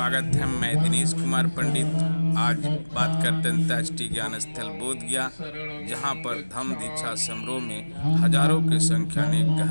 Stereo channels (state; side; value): inverted; both; correlation -1.00